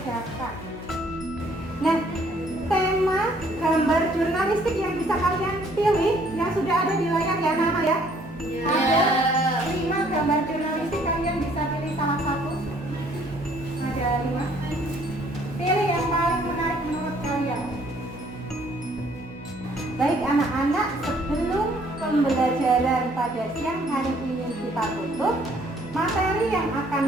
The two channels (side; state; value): right; noise; hum, 21 dB below the sound